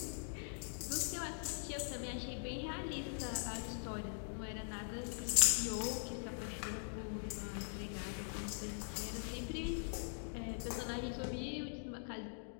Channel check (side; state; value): right; silent; digital silence